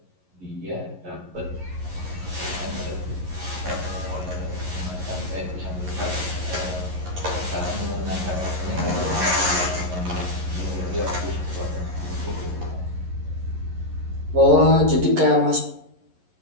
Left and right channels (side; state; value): left; late; 11 ms